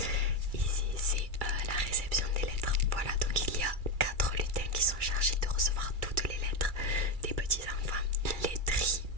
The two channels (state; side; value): late; left; 2.3 ms